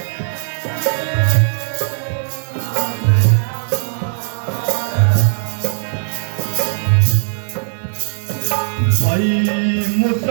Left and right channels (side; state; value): left; silent; digital silence